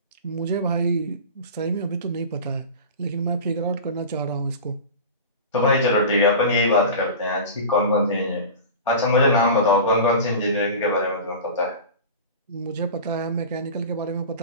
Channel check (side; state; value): both; inverted; correlation -0.32